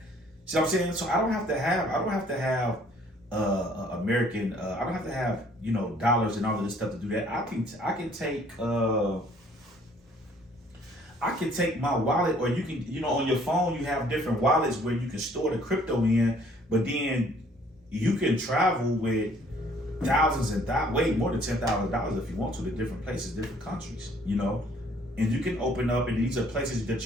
See what I'm saying? So I don't have to have American, I don't have to have, you know, dollars and all of this stuff to do that. I can take my wallet, or you can, you know, on your phone you have different wallets where you can store the crypto in, but then you can travel with thousands and way more than $10,000 if you want to different places, different countries, you know. And you can open up, and these are places that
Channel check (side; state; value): both; normal; correlation 0.60